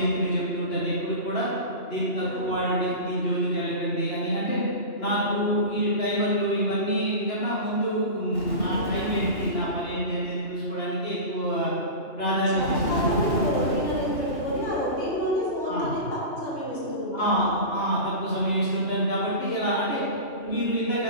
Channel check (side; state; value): right; late; 2.9 ms